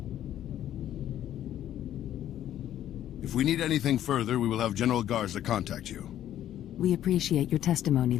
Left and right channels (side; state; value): right; quieter; 11.7 dB